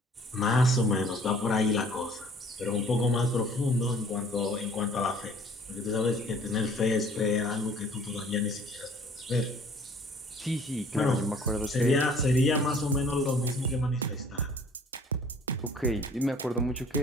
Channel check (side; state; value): both; normal; correlation 0.53